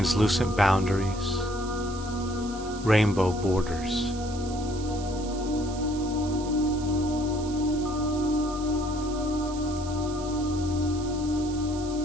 boundaries, rainbow borders.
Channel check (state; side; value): noise; right; hiss, 15 dB below the sound